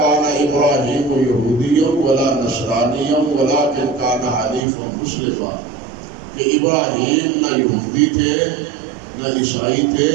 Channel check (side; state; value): left; drops out; at 4.6 s